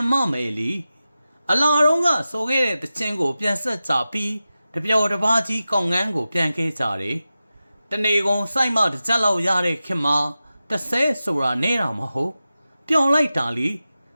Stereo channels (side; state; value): both; inverted; correlation -0.93